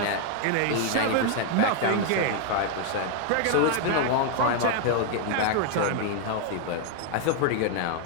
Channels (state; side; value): different; both; correlation 0.00